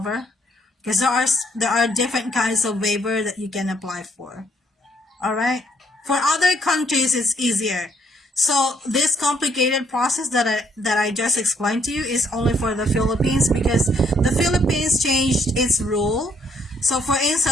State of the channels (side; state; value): both; normal; correlation 0.69